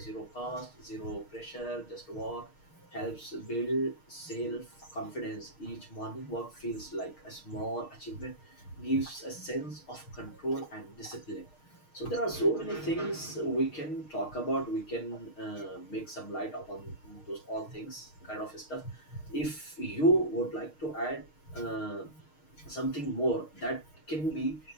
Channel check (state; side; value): late; right; 6.5 ms